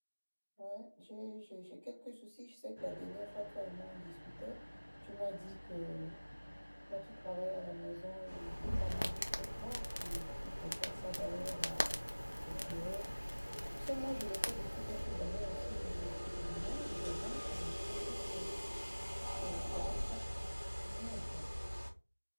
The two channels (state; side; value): inverted; both; correlation -1.00